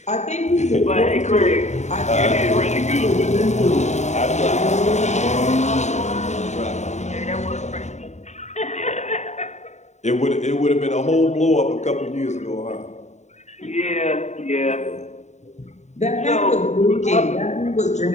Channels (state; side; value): late; right; 0.34 ms